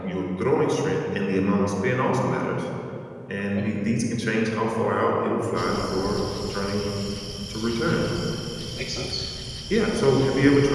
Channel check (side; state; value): both; identical; correlation 1.00